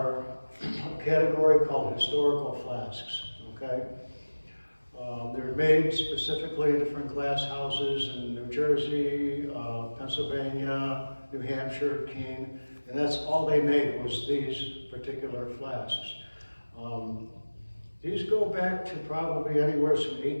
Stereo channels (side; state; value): both; inverted; correlation -1.00